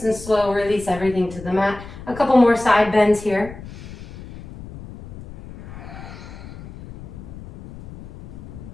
and slow, release everything to the mat. A couple more side bends here.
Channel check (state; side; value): noise; left; rumble, 15 dB below the sound